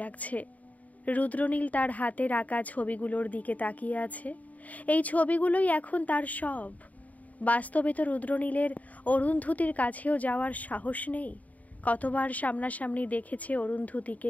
লাগছে। রুদ্রনীল তার হাতের আঁকা ছবিগুলোর দিকে তাকিয়ে আছে। এই ছবিগুলোই এখন তার সব। বাস্তবে তো রুদ্রনীলের অরুন্ধতির কাছেও যাওয়ার সাহস নেই। কতবার সামনাসামনি দেখেছে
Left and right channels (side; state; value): right; late; 0.072 ms